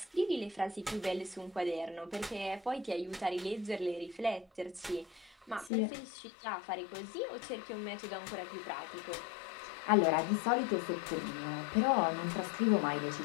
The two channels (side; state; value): right; drops out; at 5.7 s